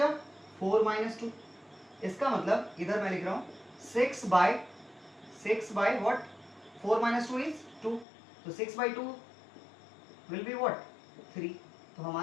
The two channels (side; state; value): right; drops out; at 8.1 s